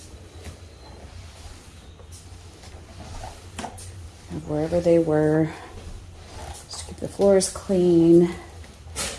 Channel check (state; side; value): identical; both; correlation 1.00